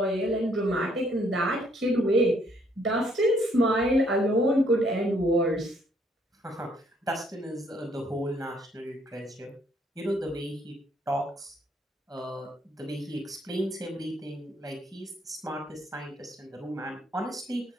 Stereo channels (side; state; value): both; normal; correlation 0.67